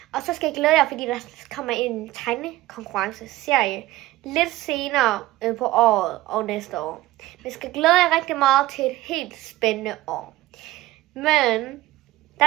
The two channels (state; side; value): quieter; left; 16.8 dB